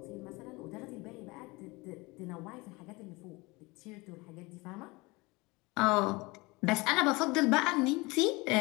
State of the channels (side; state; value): right; quieter; 24.2 dB